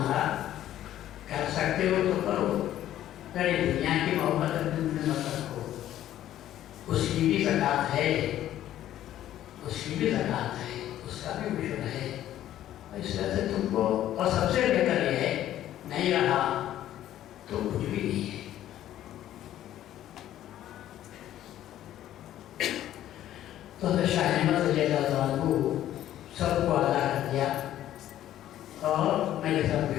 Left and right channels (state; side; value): quieter; right; 12.5 dB